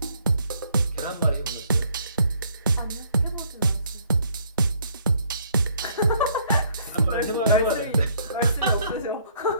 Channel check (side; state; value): both; inverted; correlation -0.65